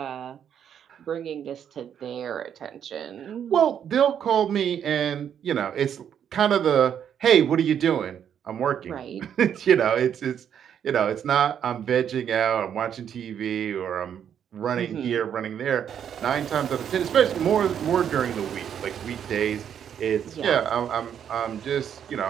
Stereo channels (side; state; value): left; quieter; 8.8 dB